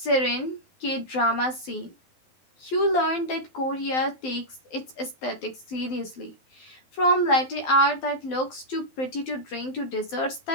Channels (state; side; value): late; right; 12 ms